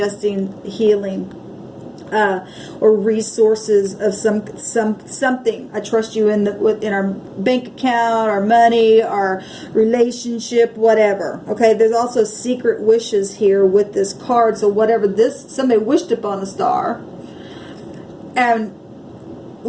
healing. Or resources of something. I trust you in our bank account, our money, our relationship, whatever. Okay, there's also secret wishes here with this card. So whatever somebody wished upon a star, and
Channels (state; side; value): identical; both; correlation 1.00